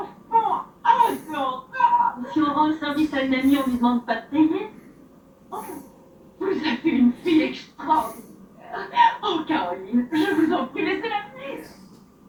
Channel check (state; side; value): identical; both; correlation 1.00